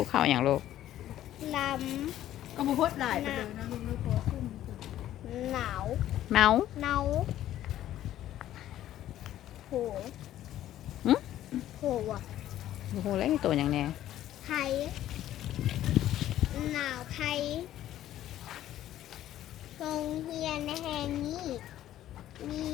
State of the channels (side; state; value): right; quieter; 12.8 dB